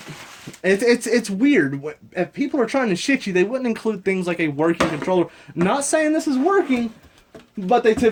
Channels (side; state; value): both; identical; correlation 1.00